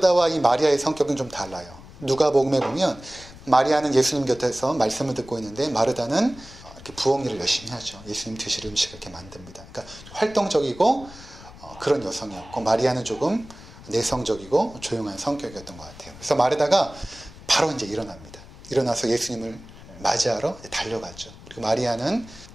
이 마리아의 성격은 좀 달라요. 누가복음에 보면 마리아는 예수님 곁에서 말씀을 듣고 있는데 마르다는 이렇게 부엌 일을 열심히 하죠. 예수님 드실 음식을 이렇게 만듭니다. 그러니까 활동적이고 그런 여성이었고, 마리아는 조금 내성적이고 조용한 성격이었던 것 같아요. 그래서 마르다가 바로 이제 일어납니다. 일어나서 예수님을 맞이하러 달려가죠. 그리고 마리아는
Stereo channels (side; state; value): left; noise; rumble, 19 dB below the sound